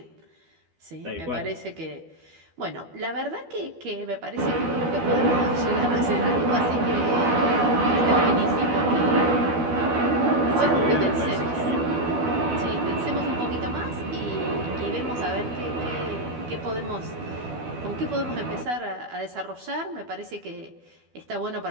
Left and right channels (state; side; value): late; left; 12 ms